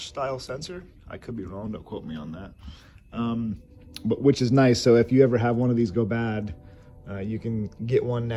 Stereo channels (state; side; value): identical; both; correlation 1.00